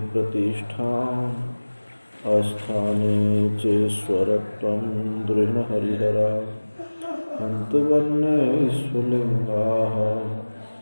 प्रतिष्ठाम् आस्थाने चेश्वरत्वं दृढहरिहरा हन्तवन्येष्वलिङ्गाः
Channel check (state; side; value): inverted; both; correlation -1.00